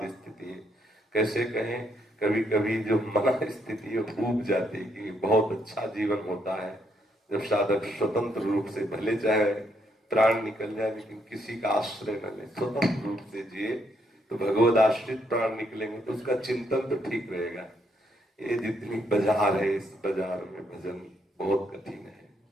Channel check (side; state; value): both; normal; correlation 0.74